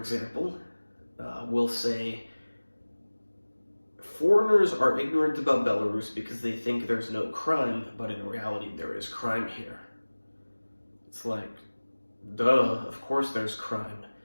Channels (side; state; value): both; inverted; correlation -1.00